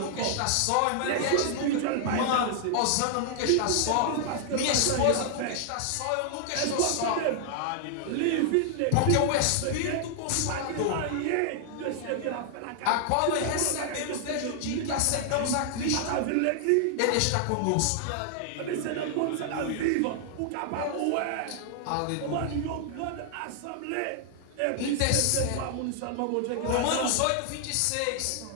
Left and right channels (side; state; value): both; different; correlation 0.00